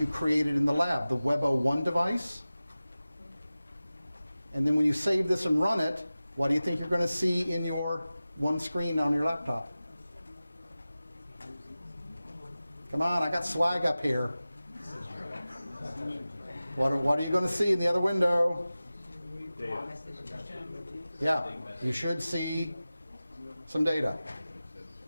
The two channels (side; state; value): both; inverted; correlation -0.96